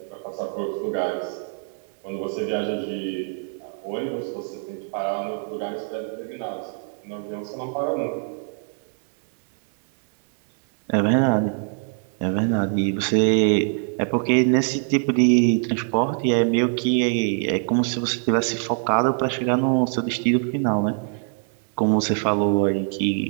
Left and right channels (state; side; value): silent; left; 58 dB below the other